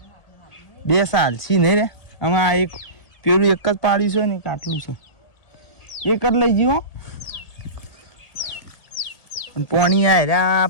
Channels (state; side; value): late; right; 1.8 ms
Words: 2 સાલ છી નહીં રે આમાં એક પેલું એક જ પાડ્યું છે ને એક આટલું છે એક જ લઈ ગયો પાણી આયરા